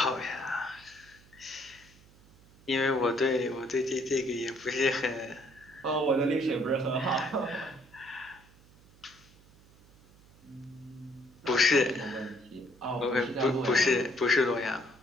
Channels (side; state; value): right; noise; hum, 26 dB below the sound